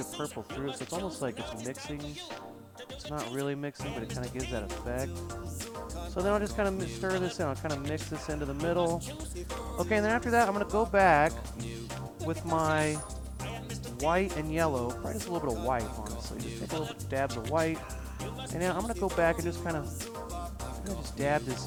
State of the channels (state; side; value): identical; both; correlation 1.00